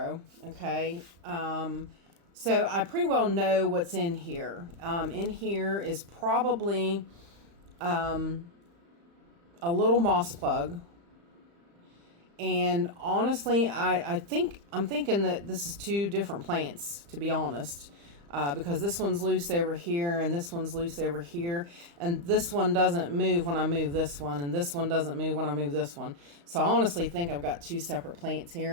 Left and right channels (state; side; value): late; left; 35 ms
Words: okay? So I pretty well know what's in here. In here is probably a little moss plug. And honestly, I'm thinking that this is two different plants, to be honest. Because this one's loose over here and this one's loose over here, and this one doesn't move when I move this one, and this one doesn't move when I move this one. So I honestly think I've got two separate plants